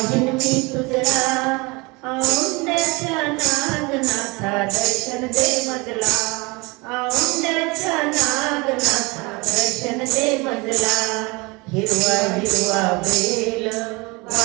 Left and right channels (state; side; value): quieter; left; 26.2 dB